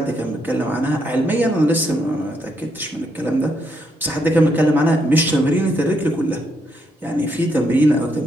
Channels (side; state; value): both; normal; correlation 0.77